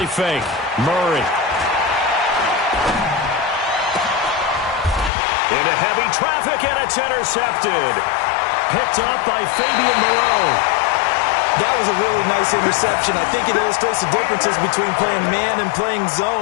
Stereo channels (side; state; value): right; drops out; at 5.1 s